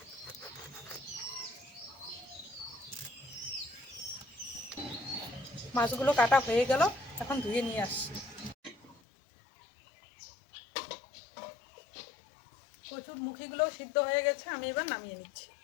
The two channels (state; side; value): drops out; right; at 9.0 s